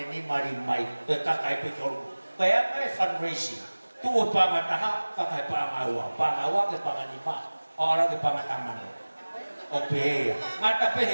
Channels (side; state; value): both; inverted; correlation -1.00